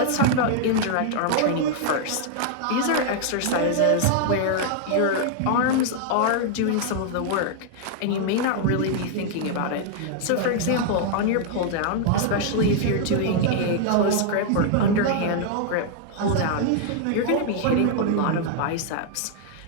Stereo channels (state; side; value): different; both; correlation -0.01